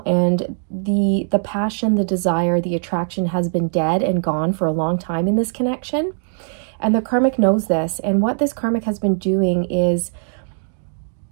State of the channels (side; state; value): left; silent; digital silence